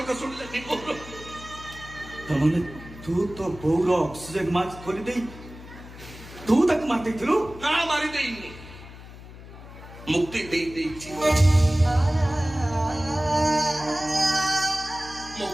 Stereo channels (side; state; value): left; noise; hum, 16 dB below the sound